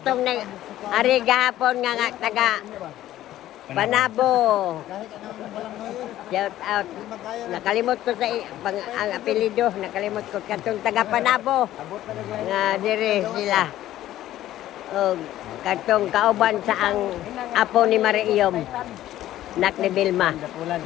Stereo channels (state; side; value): quieter; right; 13.7 dB